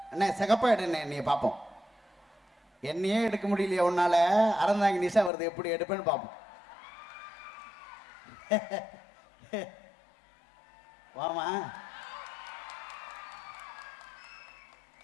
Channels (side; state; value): right; drops out; at 5.3 s